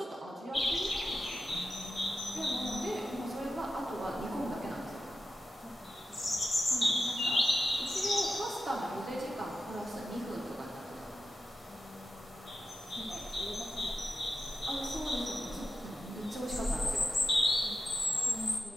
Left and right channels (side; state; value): both; normal; correlation 0.90